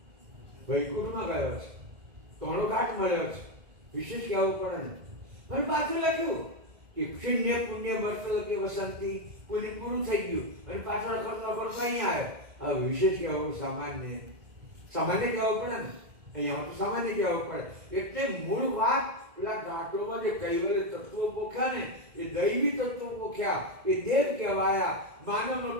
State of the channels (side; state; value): left; late; 1.9 ms